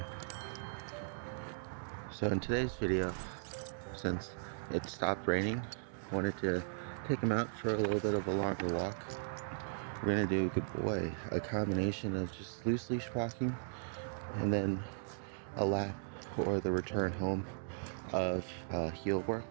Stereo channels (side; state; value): left; silent; digital silence